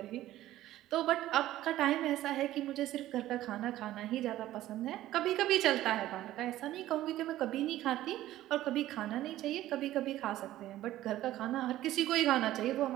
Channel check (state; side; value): quieter; left; 14.4 dB